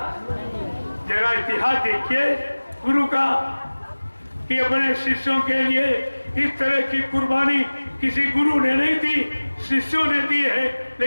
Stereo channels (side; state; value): both; inverted; correlation -1.00